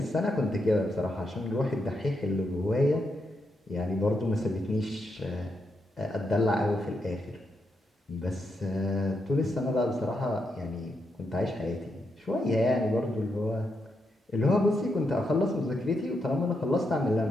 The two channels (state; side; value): normal; both; correlation 0.82